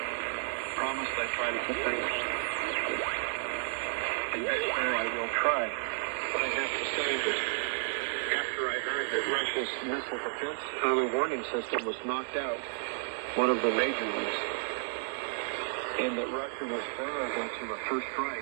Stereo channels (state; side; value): silent; left; digital silence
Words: Promise I try to keep things. And next year I will try. But I have to say that after I heard that Russia's missile defense early warning system was knocked out, one of the major ones, and that Russia was vulnerable to a first